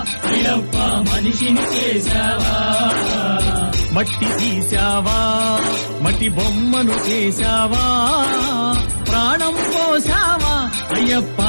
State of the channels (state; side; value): inverted; both; correlation -1.00